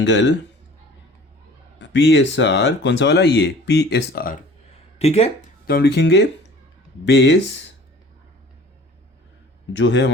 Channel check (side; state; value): both; normal; correlation 0.47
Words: PSR, कौन सा वाला, ये PSR। ठीक है, तो हम लिखेंगे बेस जो है